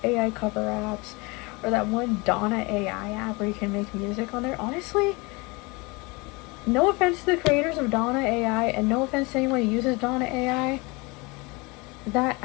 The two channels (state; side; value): quieter; right; 26.6 dB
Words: AI cover apps, or that one Donna AI app where you can make music on there. Honestly, no offense to the creators of Donna AI, and no offense to anyone who uses Donna AI, that